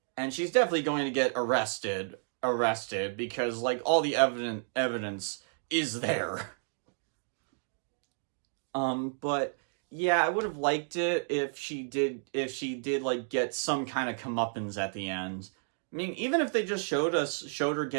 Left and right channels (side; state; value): left; silent; digital silence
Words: and she's definitely going to get arrested because like all the evidence is there. But yeah, I would have liked it if she did like get some kind of comeuppance at the end. I mean, even if they just showed her